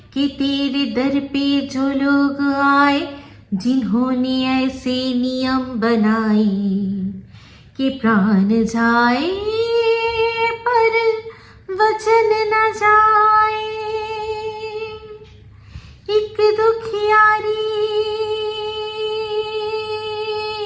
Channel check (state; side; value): identical; both; correlation 1.00